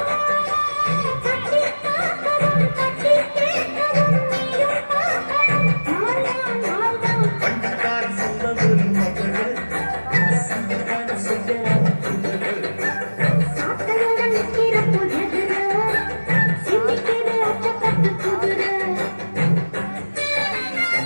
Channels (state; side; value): inverted; both; correlation -1.00